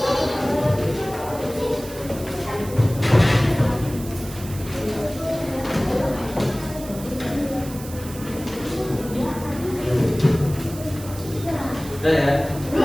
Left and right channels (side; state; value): right; noise; hiss, 15 dB below the sound